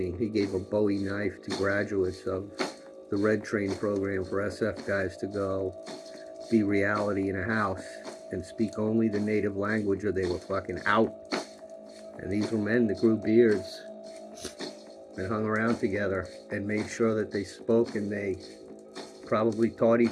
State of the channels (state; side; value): identical; both; correlation 1.00